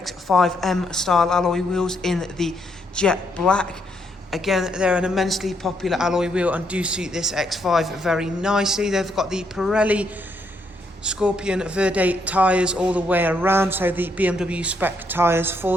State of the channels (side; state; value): both; normal; correlation 0.75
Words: style alloy wheels in the jet black. Again, they're an immensely popular alloy wheel and do suit this X5 very nicely. They've got the Pirelli Scorpion Verde tyres all the way around, so the BMW Spec tyres